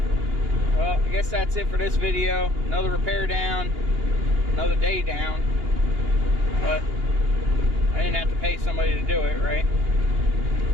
Well, I guess that's it for this video. Another repair down, another day down. But I didn't have to pay somebody to do it, right?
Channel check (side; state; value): left; late; 2.8 ms